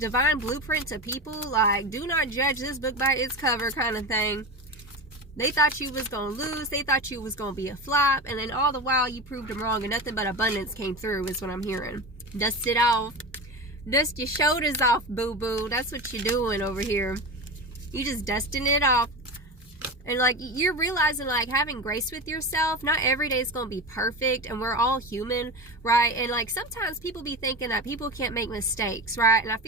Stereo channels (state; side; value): normal; both; correlation 0.24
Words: blueprint to people. Like, do not judge this book by its cover kind of thing. They thought you was going to lose. They thought you was going to be a flop. And then all the while you proved them wrong and nothing but abundance came through is what I'm hearing. Dust it off. Dust your shoulders off, boo-boo. That's what you're doing over here. You just dusting it off. And like you're realizing, like, having grace with yourself, not every day is going to be perfect, and we're all human, right? And like sometimes people be thinking that people can't make mistakes, right? And I